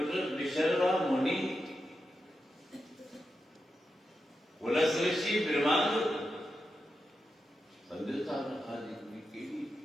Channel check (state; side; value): normal; both; correlation 0.88